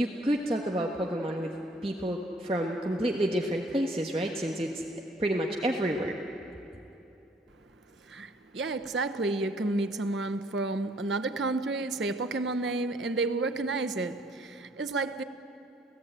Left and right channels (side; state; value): both; normal; correlation 0.61